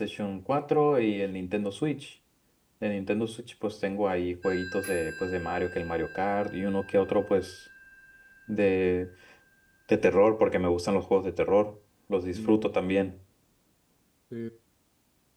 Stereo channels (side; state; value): both; identical; correlation 1.00